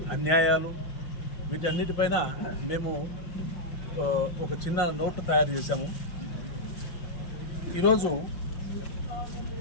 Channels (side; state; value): right; late; 5.6 ms